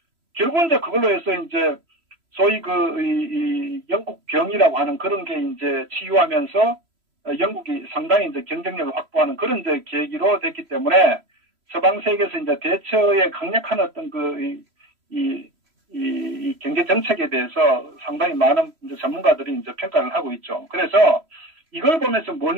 결국은 이제 그걸로 해서 이제 소위 이 영국 병이라고 하는 그런 게 이제 치유하면서 영국이 상당히 이제 경쟁력을 확보하는 그런 이제 계기로 됐기 때문에, 서방 세계에서 이제 대처의 강력한 어떤 이 경제 정책에 대해서 상당히 많은 이제 전문가들이 이제 평가를 하고 있죠. 그래서 이걸 보면서 뭘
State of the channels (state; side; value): late; left; 3.0 ms